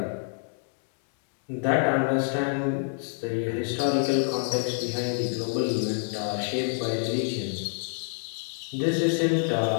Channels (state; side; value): silent; right; 60 dB below the other